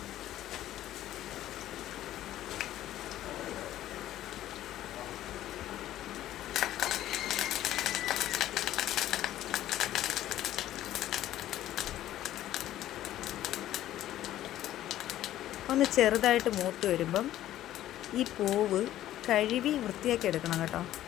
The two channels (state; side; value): quieter; right; 13.2 dB